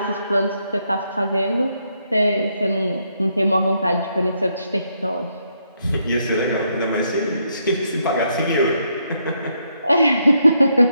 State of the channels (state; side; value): inverted; both; correlation -0.76